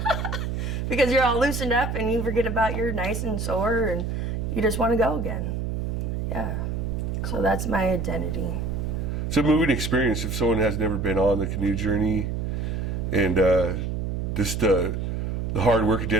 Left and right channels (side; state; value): right; noise; hum, 2 dB below the sound